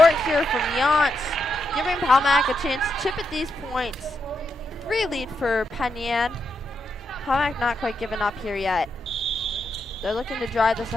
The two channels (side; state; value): both; normal; correlation 0.83